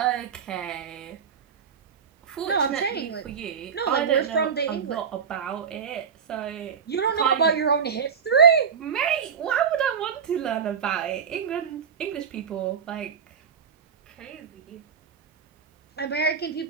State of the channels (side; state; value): left; quieter; 6.8 dB